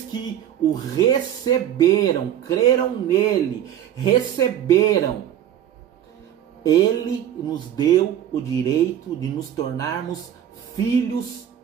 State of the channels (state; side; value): quieter; left; 10.5 dB